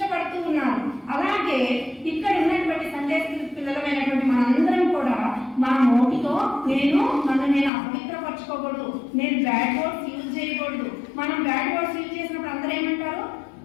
ఉన్నారు. అలాగే ఇక్కడ ఉన్నటువంటి సండే పిల్లలమైనటువంటి మనందరం కూడా మన నోటితో నన్ను నేను అపవిత్రపరచుకోకూడదు, నేను బ్యాడ్ వర్డ్స్ యూజ్ చేయకూడదు. మనం బ్యాడ్ వర్డ్స్ యూజ్ చేసినప్పుడు అందరూ ఏమంటారు,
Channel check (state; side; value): drops out; right; at 7.7 s